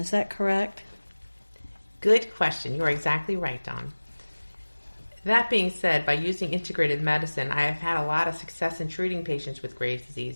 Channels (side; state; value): both; inverted; correlation -1.00